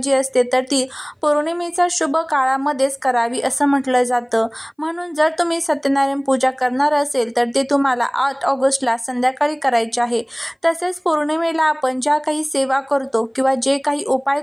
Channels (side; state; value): both; identical; correlation 1.00